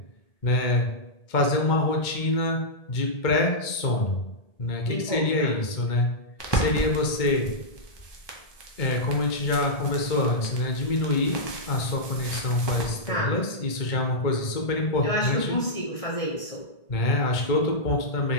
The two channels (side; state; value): right; late; 1.7 ms